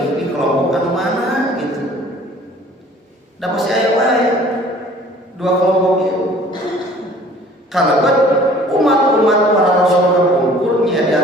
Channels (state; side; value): normal; both; correlation 0.51